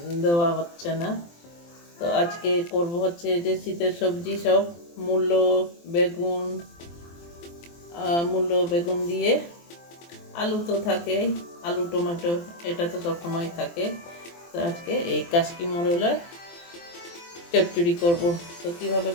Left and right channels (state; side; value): late; right; 23 ms